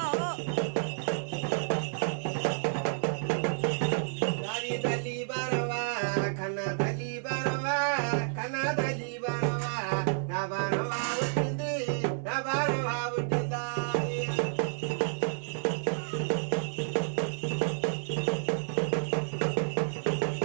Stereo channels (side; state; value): left; silent; digital silence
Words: తల్లి బారవా కన్న తల్లి బారవా, కన్న తల్లి బారవా, నా బారవా పుట్టింది, నా బారవా పుట్టిందా.